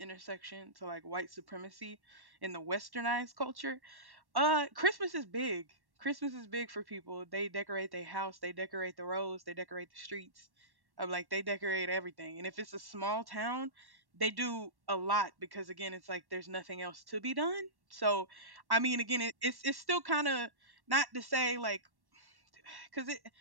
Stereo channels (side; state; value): left; late; 1.1 ms